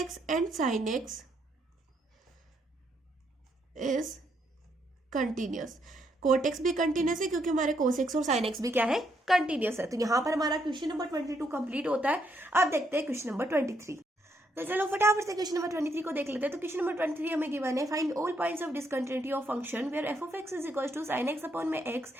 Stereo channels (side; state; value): both; normal; correlation 0.75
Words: and sin x is continuous। Cot x भी कंटिन्यूस है क्योंकि हमारे कोस एक्स और साइन एक्स भी क्या है, कंटिन्यूस है। तो यहाँ पर हमारा क्वेश्चन नंबर 22 कंप्लीट होता है। अब देखते हैं क्वेश्चन नंबर 23। तो चलो फटाफट से क्वेश्चन नंबर 23 को देख लेते हैं। तो क्वेश्चन नंबर 23 हमें गिवन है, find all points of discontinuity of function where f of x is equals to sine x upon में x,